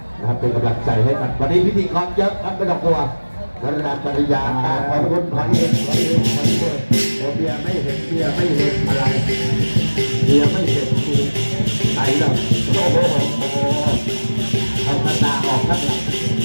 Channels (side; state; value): both; inverted; correlation -1.00